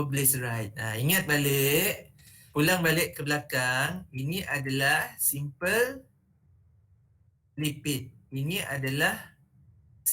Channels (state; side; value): identical; both; correlation 1.00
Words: Ingat balik, pulang balik ke belakang, ini adalah simple lipid. Ini adalah